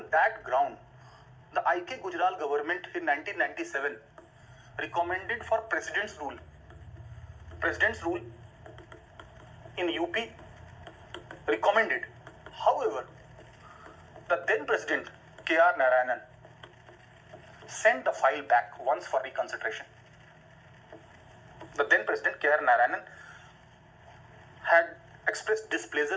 that ground, the I.K. Gujral government in 1997 recommended for President's rule. President's rule in UP recommended. However, the then President K.R. Narayanan sent the file back once for reconsideration. The then President K.R. Narayanan had expressed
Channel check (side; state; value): both; identical; correlation 1.00